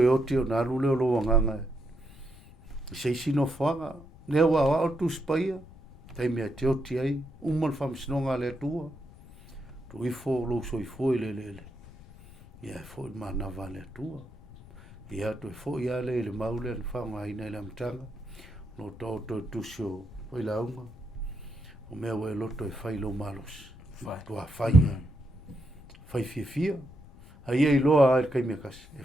oti o naru leo lo wanganga. Seisi no whanga. Nea wa o tuspaia. Teimi a te oti ai. Umal whamsinonga le atua. Tu ifo lo soifua i le. Ia e fo i manawa le atua. Ia tu e fo i ale le maule an whanga ina i le amtanga. No tauto tusio o la unga o mea we loto e fai lo malos to a fai fai fia ai ai loa ai kai me kas e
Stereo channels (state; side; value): noise; left; rumble, 20 dB below the sound